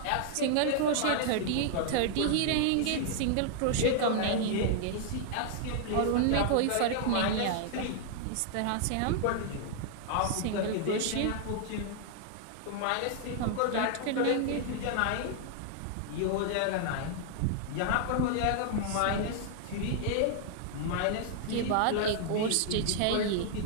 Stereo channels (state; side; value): different; both; correlation 0.00